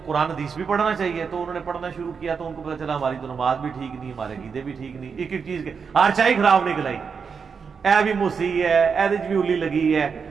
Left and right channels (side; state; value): left; quieter; 5.9 dB